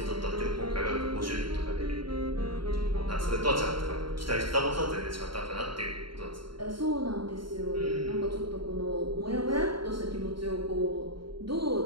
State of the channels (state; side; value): late; left; 0.73 ms